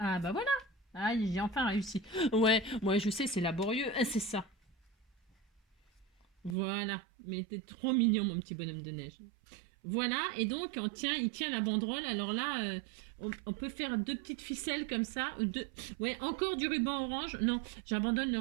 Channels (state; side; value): drops out; left; at 6.6 s